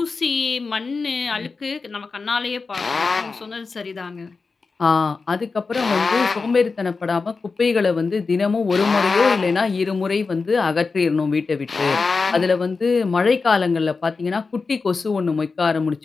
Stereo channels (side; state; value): right; quieter; 4.4 dB